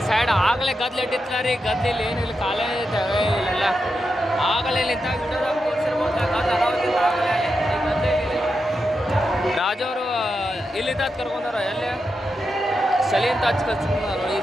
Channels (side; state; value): both; normal; correlation 0.87